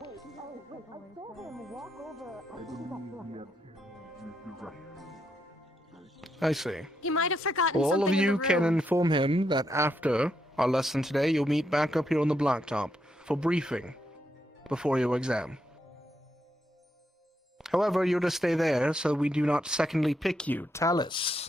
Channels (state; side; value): normal; both; correlation 0.79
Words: I see. He might have forgotten Well, all of something in you the can room. inform him that after our lesson today, you'll meet back up here on the blacktop for briefing before your exam. However, you're to stay there so we do not secondly pick you.